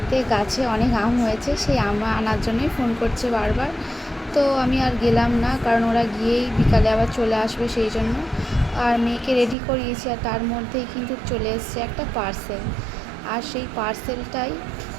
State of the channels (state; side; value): drops out; left; at 9.6 s